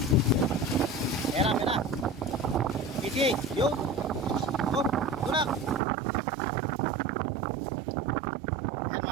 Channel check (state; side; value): drops out; left; at 5.8 s